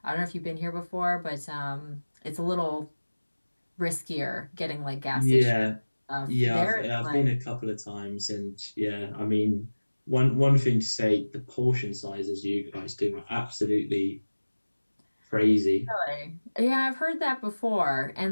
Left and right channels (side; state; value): both; inverted; correlation -1.00